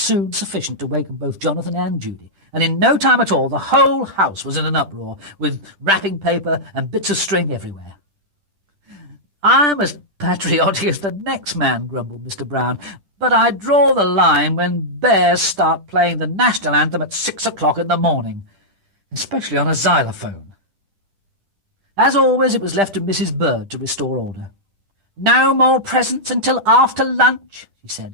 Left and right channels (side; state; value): left; late; 10 ms